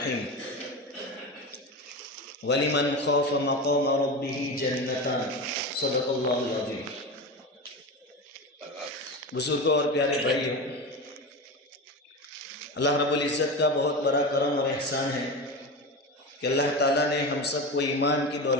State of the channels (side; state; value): both; normal; correlation 0.23